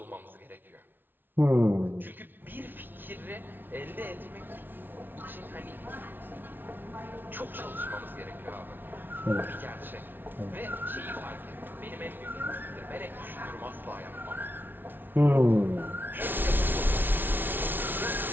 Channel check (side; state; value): left; late; 0.095 ms